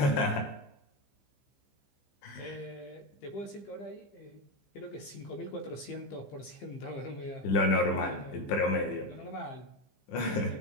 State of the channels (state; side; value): late; right; 15 ms